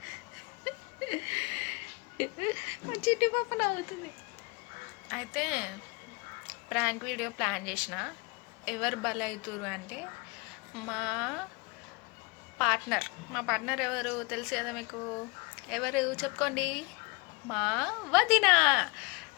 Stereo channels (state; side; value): quieter; right; 27.7 dB